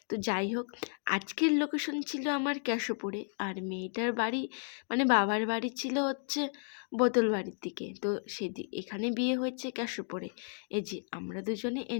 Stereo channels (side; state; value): right; silent; 56 dB below the other